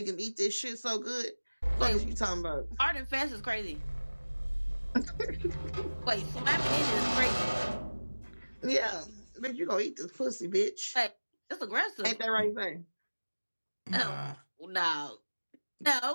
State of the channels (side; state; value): both; inverted; correlation -1.00